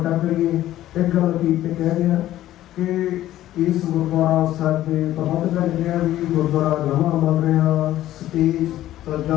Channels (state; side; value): quieter; right; 13.7 dB